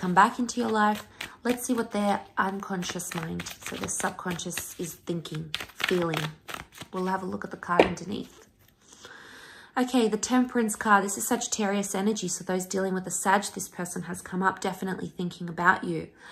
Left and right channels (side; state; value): both; identical; correlation 1.00